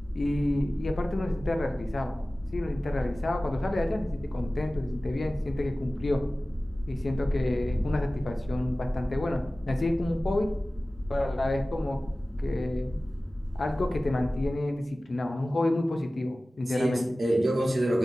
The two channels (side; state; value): both; normal; correlation 0.97